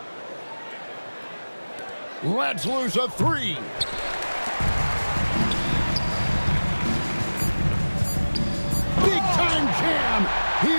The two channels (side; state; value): both; inverted; correlation -1.00